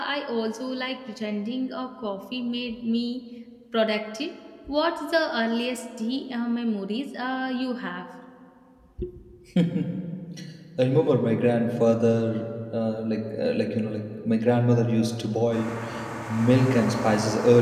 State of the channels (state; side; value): identical; both; correlation 1.00